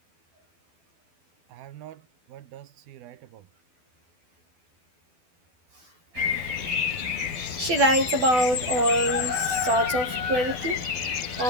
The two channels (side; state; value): left; late; 12 ms